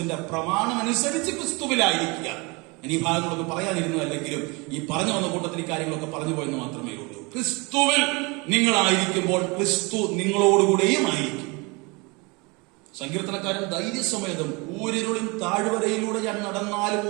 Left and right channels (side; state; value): left; quieter; 27.8 dB